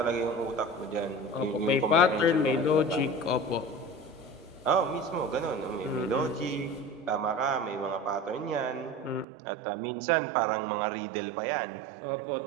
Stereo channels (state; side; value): drops out; left; at 9.2 s